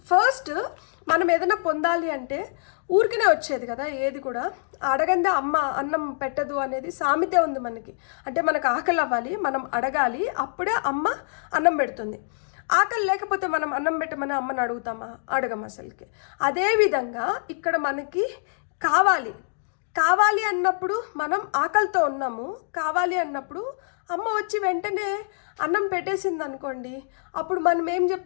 మనం ఏదైనా పొందాలి అంటే ఊరికనే వచ్చేది కదా, ఏది కూడా అడగందే అమ్మ అన్నం పెట్టదు అనేది సామెతే ఉంది మనకి. అంటే మనకు ఆకలి అవ్వాలి, మనం అడగాలి, అప్పుడే అమ్మ అన్నం పెడుతుంది. ఆకలి లేకపోతే మనం అన్నం పెట్టమని అమ్మని అడుగుతామా? అడగం అసలుకి. అదేవిధంగా ఇక్కడ మనకి కావాలి అన్నప్పుడు మనం ఆకలితో ఉన్నాము, కావాలి అన్నప్పుడు అమ్మ వచ్చి వెంటనే అన్నం పెట్టేసింది అనుకోండి, అప్పుడు మనం ఏం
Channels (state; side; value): silent; right; digital silence